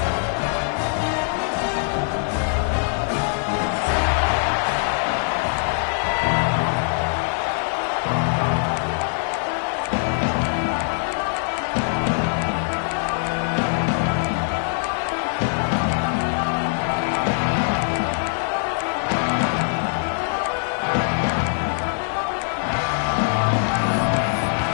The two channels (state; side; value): silent; right; 63 dB below the other